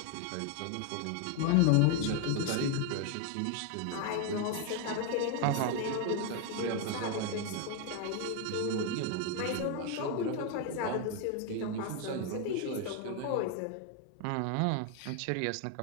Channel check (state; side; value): different; both; correlation 0.01